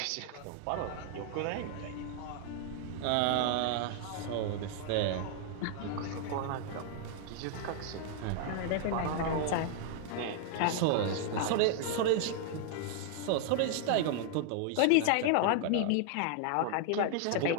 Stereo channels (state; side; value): different; both; correlation 0.00